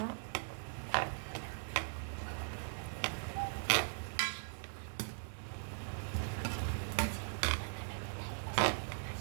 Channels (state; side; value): silent; left; 51 dB below the other